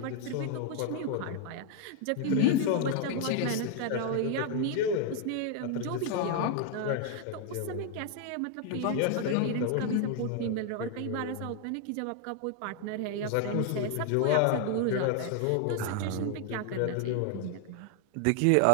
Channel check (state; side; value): different; both; correlation 0.00